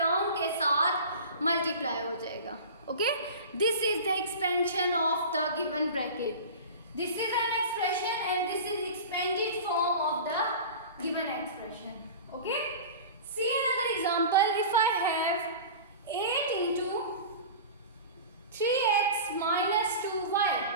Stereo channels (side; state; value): both; inverted; correlation -0.34